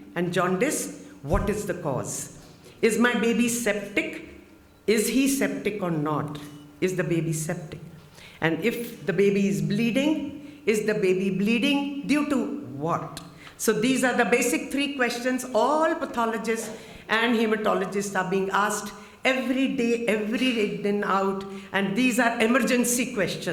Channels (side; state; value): both; identical; correlation 1.00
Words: and jaundice? What is the cause? Is my baby septic? Is he septic or not? Is the baby septic? And if the baby is bleeding, is the baby bleeding due to what? So these are the basic three questions all pathologists and hematologists are being asked every day in and out, and these are emergency